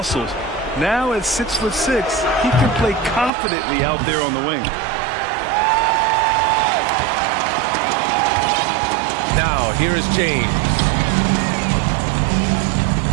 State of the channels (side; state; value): left; drops out; at 3.3 s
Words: Now at 6'6", he can play confidently out there on the wing. Now, here is James.